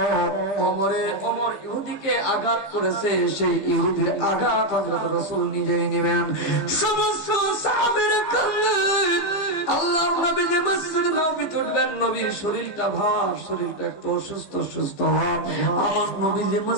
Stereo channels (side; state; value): right; late; 15 ms